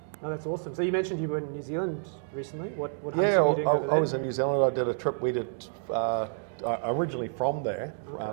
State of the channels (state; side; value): silent; left; digital silence